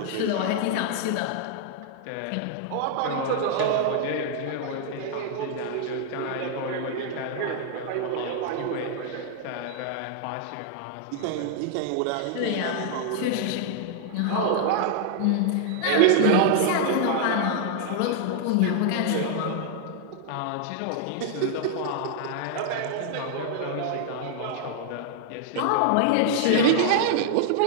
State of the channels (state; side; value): different; both; correlation -0.01